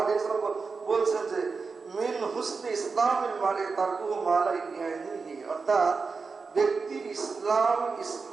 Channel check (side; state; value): left; quieter; 4.7 dB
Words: আলাইহি ওয়াসাল্লাম বলছেন যে মিন হুসনি ইসলামিল মারই তারকুহু মা লা ইয়ানিহি, অর্থাৎ ব্যক্তির